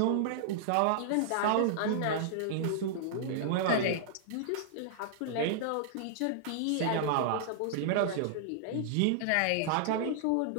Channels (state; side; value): different; both; correlation -0.01